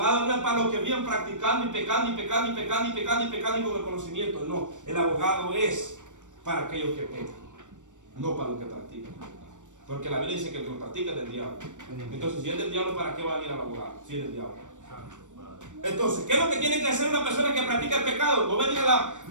no es para los que vienen practicando y pecando y con el conocimiento. No, el abogado es para aquellos que pecan, no para los que practican. Porque la Biblia dice que el que lo practica es del diablo. Entonces, si es del diablo, ¿para qué va a ir al abogado? Si es del diablo. Entonces, ¿qué es lo que tiene que hacer una persona que practica el pecado? No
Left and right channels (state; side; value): late; left; 0.86 ms